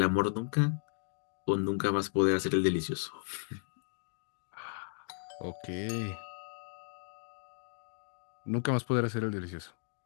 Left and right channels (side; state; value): right; silent; 55 dB below the other